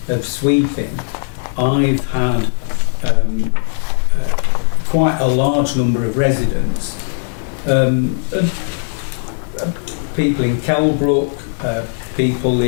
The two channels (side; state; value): right; silent; 66 dB below the other